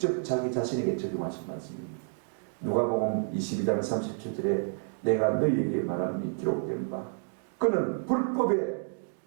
자기 자신에게 적용하신 말씀입니다. 누가복음 22장 37절에 내가 너희에게 말하니 기록된 바 그는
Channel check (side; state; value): left; silent; digital silence